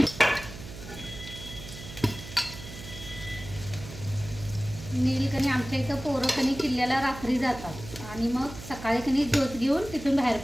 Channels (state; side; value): noise; right; hum, 13 dB below the sound